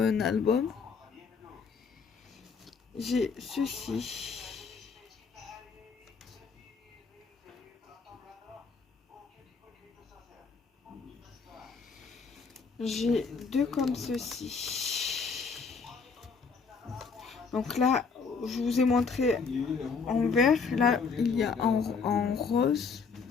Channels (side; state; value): right; quieter; 5.2 dB